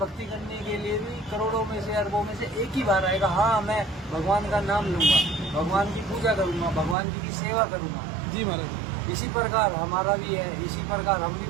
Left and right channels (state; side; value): drops out; left; at 7.0 s